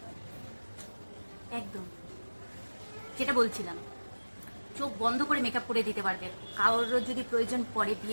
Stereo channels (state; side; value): inverted; both; correlation -1.00